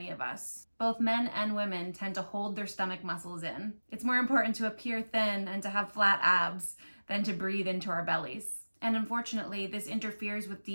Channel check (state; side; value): inverted; both; correlation -1.00